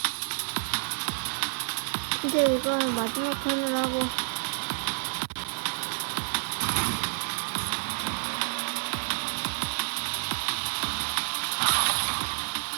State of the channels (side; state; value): left; silent; digital silence